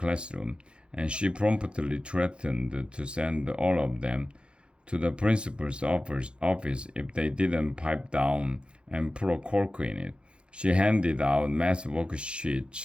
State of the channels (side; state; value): left; late; 0.056 ms